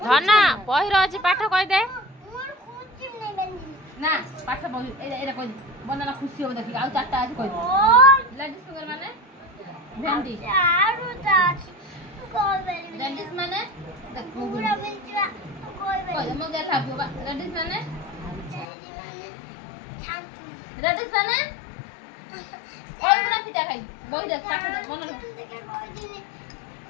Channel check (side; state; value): right; drops out; at 18.7 s